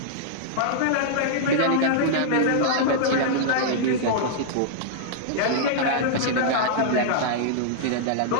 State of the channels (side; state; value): both; different; correlation -0.02